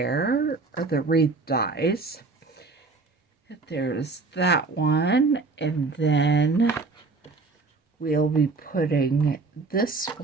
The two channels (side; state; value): left; quieter; 4.0 dB